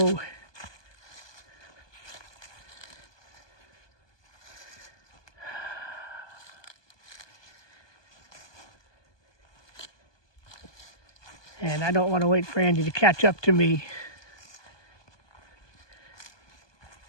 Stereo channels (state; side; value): late; right; 1.2 ms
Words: And I don't want to wait for Andy to catch up to me,